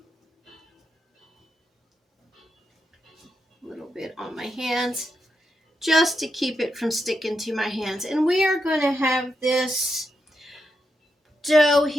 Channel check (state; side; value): normal; both; correlation 0.85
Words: A little bit on my hands just to keep it from sticking to my hands. And we are going to have this dough